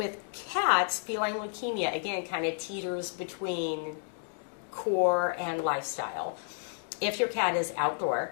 cats, feline leukemia, again, kind of teeters between core and lifestyle. If your cat is outdoor,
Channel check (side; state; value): right; silent; digital silence